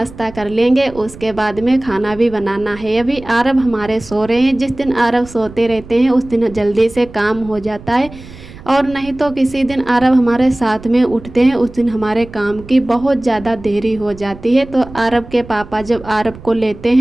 कर लेंगे, उसके बाद में खाना भी बनाना है। अभी आरब हमारे सो रहे हैं। जिस दिन आरब सोते रहते हैं उस दिन जल्दी से काम हो जाता है, और नहीं तो किसी दिन आरब हमारे साथ में उठते हैं उस दिन हमारे काम की बहुत ज़्यादा देरी हो जाती है। तो आरब के पापा जब आरब को लेते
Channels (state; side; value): noise; right; rumble, 17 dB below the sound